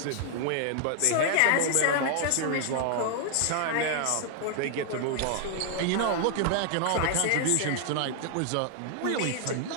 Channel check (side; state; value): both; different; correlation 0.00